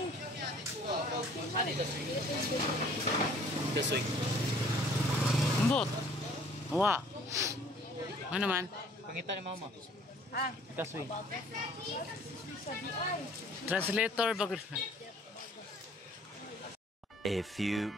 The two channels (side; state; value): both; normal; correlation 0.55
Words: This week. Ambot. Wa. Ano man? Pangita ni mama. Ah, Kaswi. Translator bagay. A few